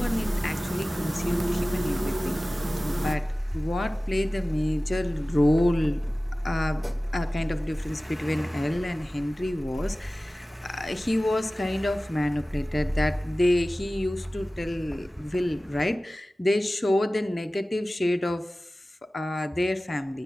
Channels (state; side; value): normal; both; correlation 0.97